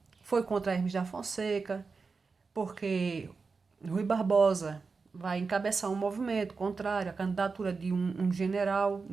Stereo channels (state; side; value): quieter; left; 4.6 dB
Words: Foi contra Hermes da Fonseca, porque Rui Barbosa vai encabeçar um movimento contrário à candidatura de um general,